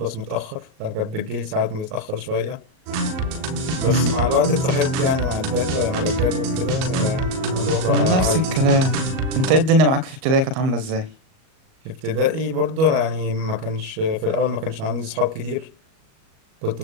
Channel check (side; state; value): left; late; 38 ms